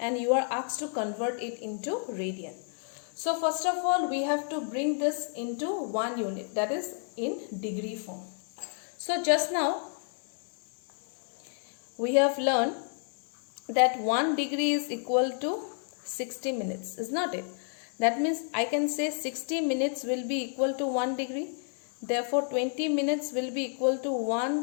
you are asked to convert it into radian. So first of all, we have to bring this into one unit, that is in degree form. So just now we have learned that 1 degree is equal to 60 minutes, is not it? That means I can say 60 minutes will be equal to 1 degree. Therefore 20 minutes will be equal to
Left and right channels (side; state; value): right; silent; 55 dB below the other